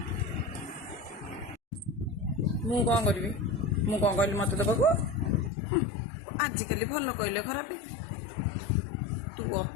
मु कौन करी मु कौन कहली मत दबाक आजिकल भल कहले खराब तू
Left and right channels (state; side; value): drops out; right; at 5.5 s